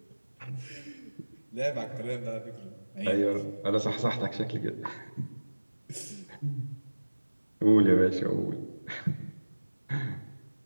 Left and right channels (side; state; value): both; inverted; correlation -1.00